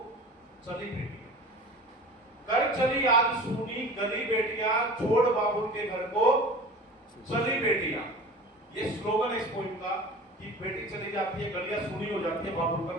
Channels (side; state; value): both; normal; correlation 0.38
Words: चली बेटियां। कर चली आज सुनी गली बेटियां, छोड़ बाबुल के घर को चली बेटियां। ये स्लोगन है इस पॉइंट का कि बेटी चली जाती है, गलियां सुनी हो जाती है, बाबुल का